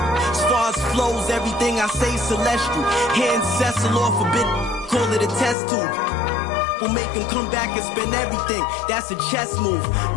As far as flows, everything I say celestial. Hand Cecil off a bit, call it a test tube. Will make him come back and spend everything. That's a chess move.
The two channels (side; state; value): right; drops out; at 5.6 s